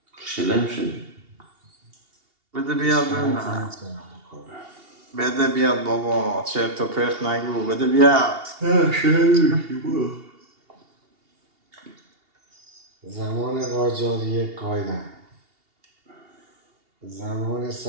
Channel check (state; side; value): late; left; 2.8 ms